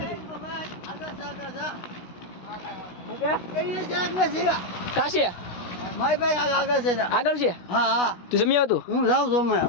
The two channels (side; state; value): right; late; 16 ms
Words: કાશી મારી ભાઈ આગળ છે. આગળ છે. હા હા, તું જમી આવતું? હું જાઉં છું.